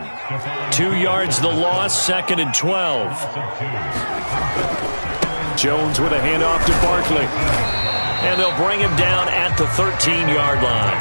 2 yards the loss, 2nd and 12. Jones with a handoff to Barkley. And they'll bring him down at the 13-yard line.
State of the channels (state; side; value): inverted; both; correlation -1.00